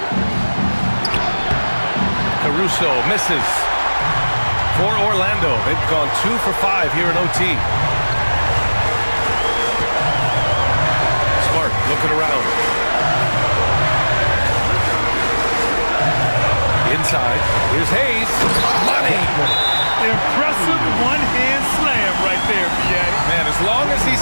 Caruso misses. For Orlando, they've gone 2 for 5 here in OT. Smart looking around. Inside. Here's Hayes. Money. Impressive one-hand slam right there, B.A. Man, as long as he's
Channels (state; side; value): inverted; both; correlation -1.00